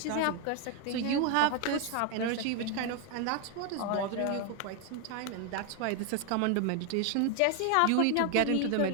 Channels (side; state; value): both; different; correlation 0.01